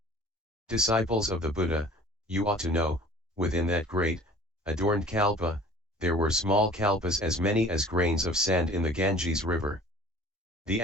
Disciples of the Buddha, you ought to know, within that great, adorned kalpa, there were small kalpas as many as grains of sand in the Ganges river. The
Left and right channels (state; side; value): normal; both; correlation 0.47